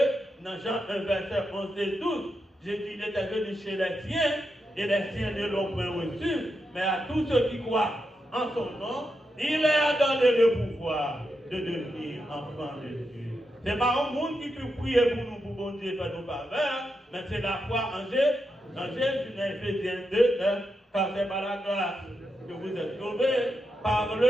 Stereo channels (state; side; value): normal; both; correlation 0.85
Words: Dans Jean 1, verset 11 et 12, Jésus était venu chez les siens, et les siens ne l'ont point reçu, mais à tous ceux qui croient en son nom, il leur a donné le pouvoir de devenir enfants de Dieu. Ce n'est pas un monde qui peut prier pour nous, pour bon Dieu faire nos faveurs, mais c'est la foi en Jésus. En Jésus, dans Éphésiens 2, car c'est par la grâce que vous êtes sauvés, par